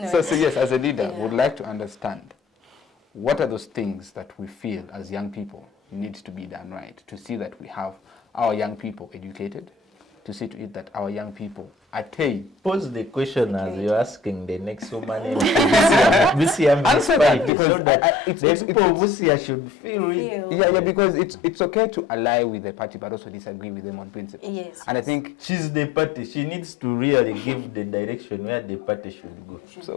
yes, as a leader, yeah, would like to understand what are those things that we feel as young people needs to be done right to see that we have our young people educated, to see to it that our young people attain. Pose the question as you're asking the next woman. Answer that, because so that it's people of Busia should feel it. Yeah, because it's okay to ally with the party but also disagree with them on principle. Yes. And I think she's the party. She needs to really give the direction where the party should go.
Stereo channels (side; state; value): right; drops out; at 17.5 s